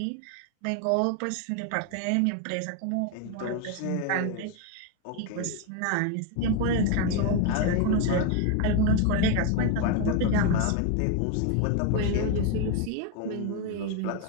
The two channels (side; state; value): both; different; correlation 0.01